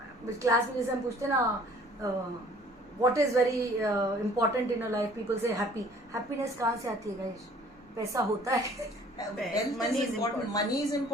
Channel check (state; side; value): normal; both; correlation 0.53